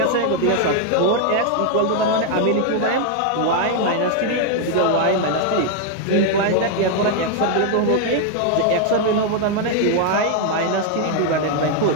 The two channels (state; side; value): different; both; correlation 0.00